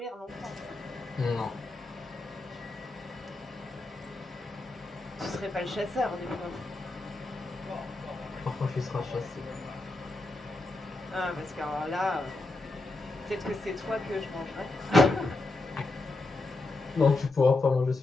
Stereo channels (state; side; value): quieter; right; 3.1 dB